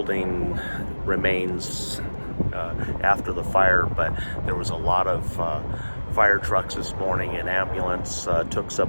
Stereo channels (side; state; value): both; inverted; correlation -1.00